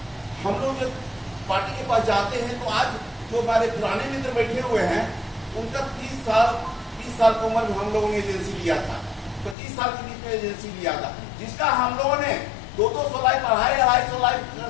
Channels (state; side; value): drops out; right; at 9.6 s